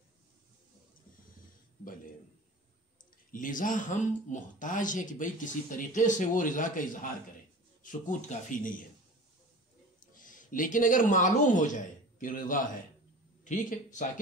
بھلے لذا ہم محتاج ہیں کہ بھئی کسی طریقے سے وہ رضا کا اظہار کرے. سکوت کافی نہیں ہے. لیکن اگر معلوم ہو جائے کہ رضا ہے، ٹھیک ہے،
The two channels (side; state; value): both; normal; correlation 0.38